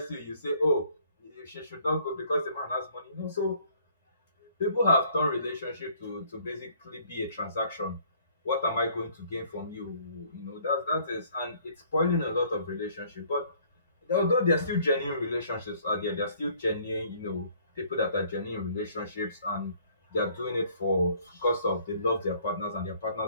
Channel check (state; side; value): inverted; both; correlation -0.60